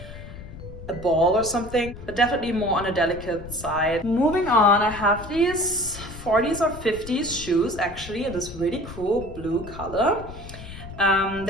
a ball or something, but definitely more on a delicate side. Moving on, I have these 40s or 50s shoes actually in this really cool blue color.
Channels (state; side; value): noise; left; rumble, 13 dB below the sound